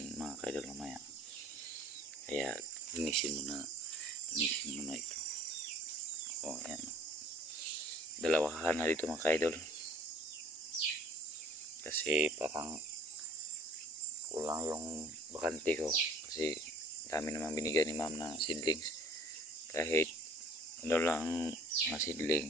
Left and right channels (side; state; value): both; normal; correlation 0.52